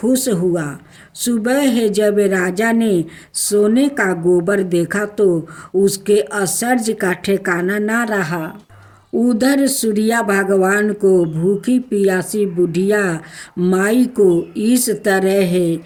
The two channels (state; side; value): identical; both; correlation 1.00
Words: हुआ। सुबह है जब राजा ने सोने का गोबर देखा तो उसके आश्चर्य का ठिकाना ना रहा। उधर सूर्या भगवान को भूखी प्यासी बुढ़िया माई को इस तरह